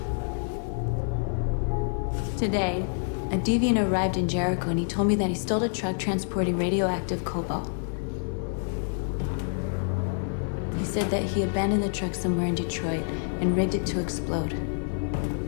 Today, a deviant arrived in Jericho and he told me that he stole a truck transporting radioactive cobalt. He said that he abandoned the truck somewhere in Detroit and rigged it to explode.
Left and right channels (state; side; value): silent; right; 56 dB below the other